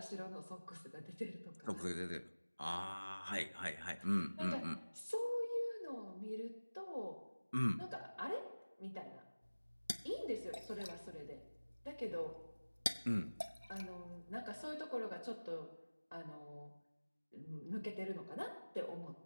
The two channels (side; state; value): both; inverted; correlation -1.00